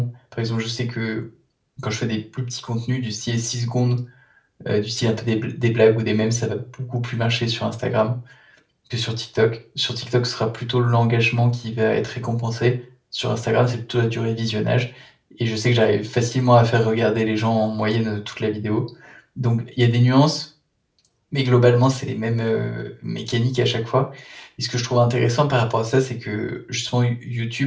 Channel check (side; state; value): both; identical; correlation 1.00